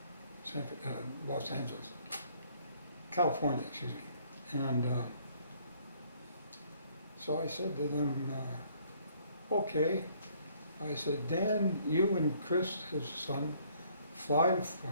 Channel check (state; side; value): inverted; both; correlation -0.63